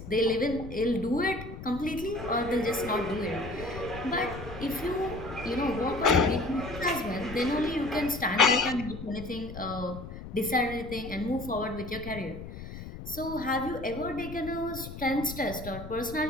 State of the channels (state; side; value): noise; left; rumble, 11 dB below the sound